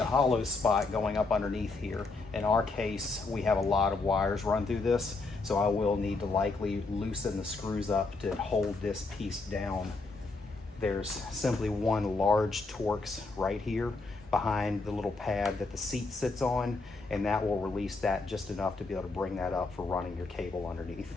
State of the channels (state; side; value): quieter; right; 3.7 dB